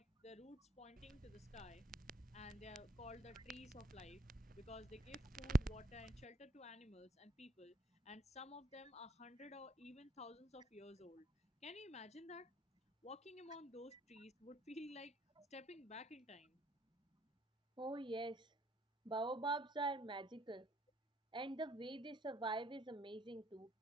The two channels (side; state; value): both; normal; correlation 0.66